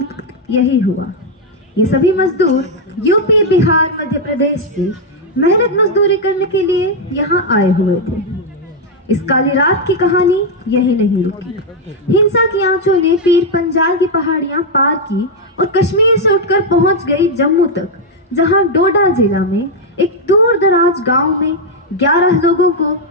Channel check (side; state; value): both; normal; correlation 0.00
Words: यही हुआ। ये सभी मजदूर यूपी, बिहार, मध्य प्रदेश से मेहनत मजदूरी करने के लिए यहाँ आए हुए थे। इस काली रात की कहानी यही नहीं रुकी। हिंसा की आंचों ने पीर पंजाल की पहाड़ियां पार की और कश्मीर से उठकर पहुंच गई जम्मू तक, जहां डोडा जिला में एक दूर दराज गांव में 11 लोगों को